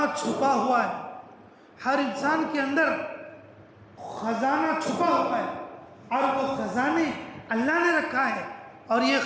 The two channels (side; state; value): both; identical; correlation 1.00